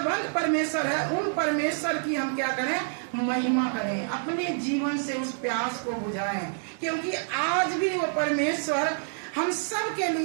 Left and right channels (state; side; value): silent; left; digital silence